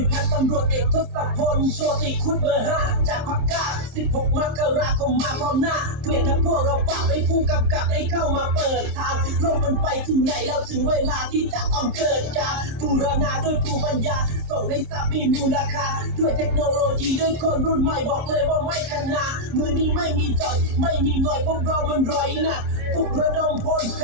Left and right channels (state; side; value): late; left; 27 ms